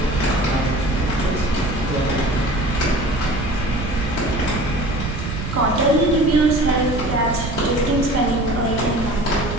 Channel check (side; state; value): right; noise; rumble, 6 dB below the sound